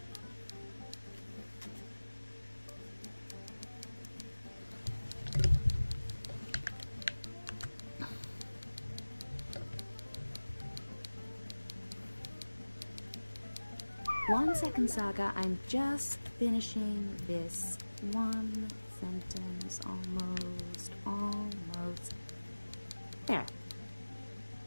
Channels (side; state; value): both; inverted; correlation -1.00